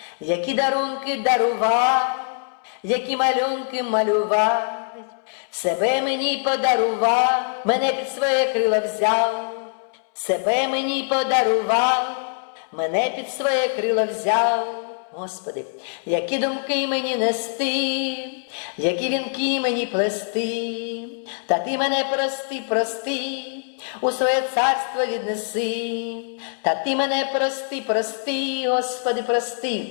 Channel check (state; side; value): silent; right; 63 dB below the other